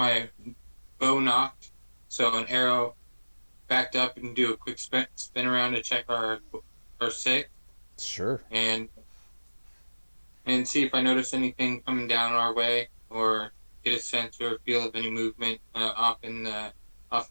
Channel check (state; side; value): inverted; both; correlation -1.00